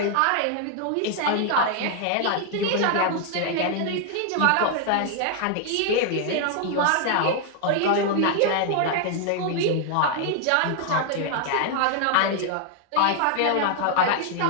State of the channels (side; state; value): both; different; correlation 0.00